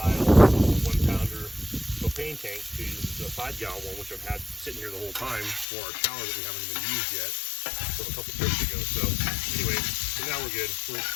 1-pounder propane tank to the 5-gallon one, which I've had sitting here the whole time for our shower that we haven't even used yet from a couple trips ago. So anyway, so now we're good.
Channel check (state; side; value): drops out; right; at 5.7 s